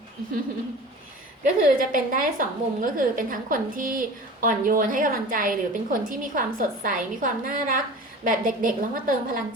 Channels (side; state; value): both; normal; correlation 0.37